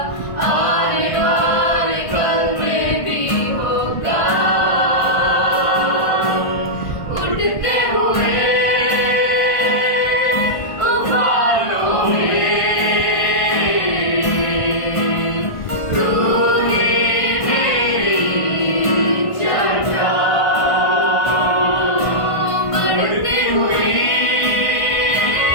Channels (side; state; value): right; late; 1.5 ms